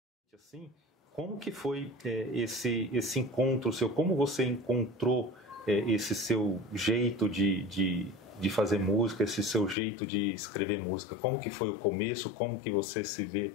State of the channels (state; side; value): drops out; right; at 9.8 s